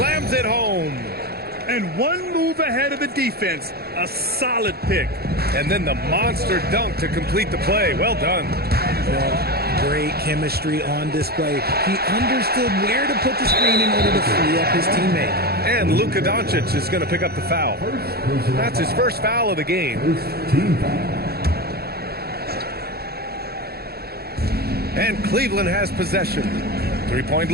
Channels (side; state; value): left; late; 0.46 ms